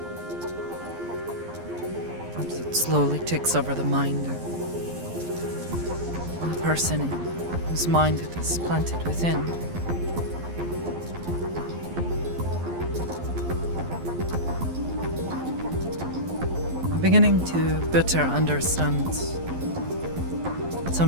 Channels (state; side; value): late; left; 12 ms